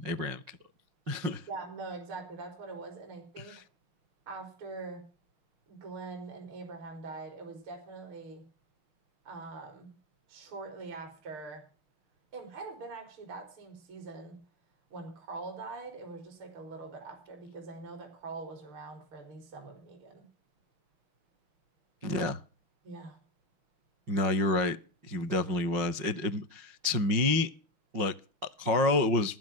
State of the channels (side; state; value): left; late; 5.6 ms